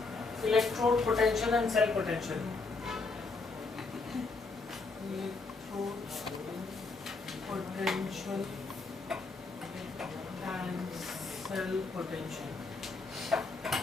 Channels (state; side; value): quieter; right; 3.9 dB